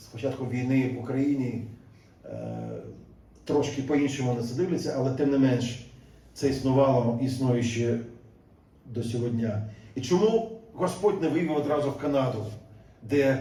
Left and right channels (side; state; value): both; identical; correlation 1.00